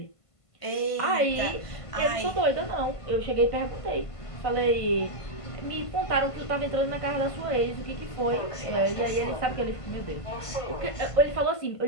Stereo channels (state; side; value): late; right; 1.5 ms